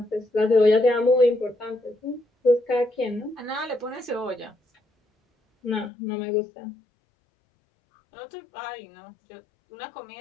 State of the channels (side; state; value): right; drops out; at 5.9 s